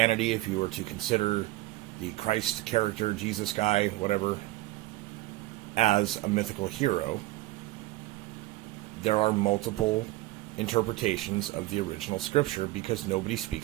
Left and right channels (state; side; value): quieter; left; 18.1 dB